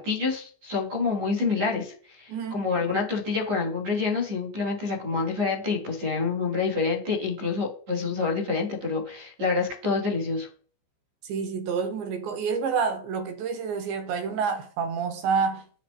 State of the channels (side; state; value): left; late; 14 ms